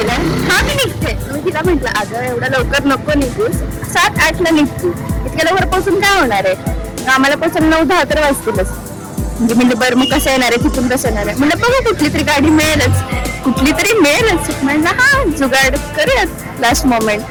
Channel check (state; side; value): identical; both; correlation 1.00